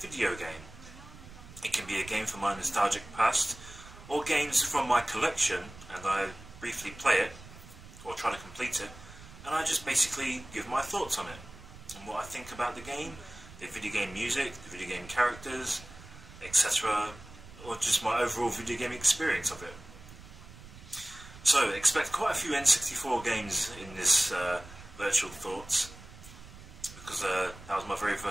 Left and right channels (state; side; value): noise; right; rumble, 17 dB below the sound